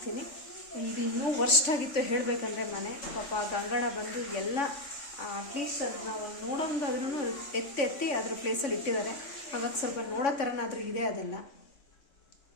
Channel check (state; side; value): late; right; 3.5 ms